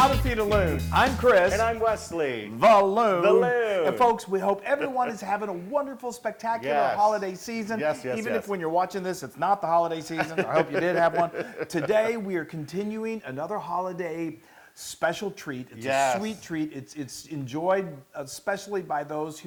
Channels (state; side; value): identical; both; correlation 1.00